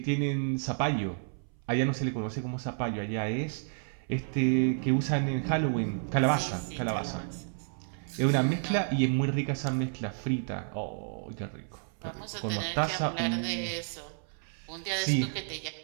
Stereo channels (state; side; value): silent; left; 57 dB below the other